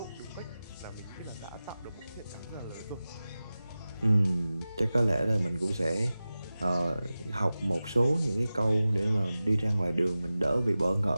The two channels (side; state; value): both; inverted; correlation -0.96